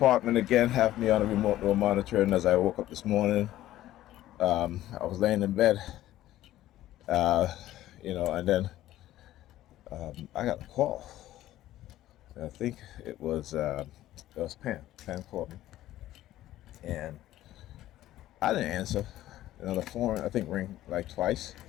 again have me on a remote door monitoring as I woke up this morning. I was laying in bed, and then I got a call. I think it was Pam. Pam called me, and I didn't answer. The phone I think rang like twice.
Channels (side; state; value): right; quieter; 14.3 dB